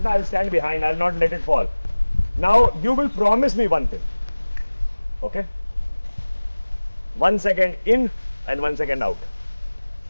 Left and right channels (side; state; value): both; inverted; correlation -1.00